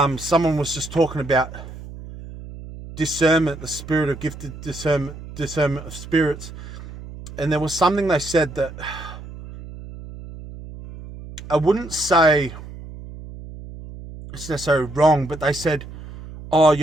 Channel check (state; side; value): noise; right; hum, 14 dB below the sound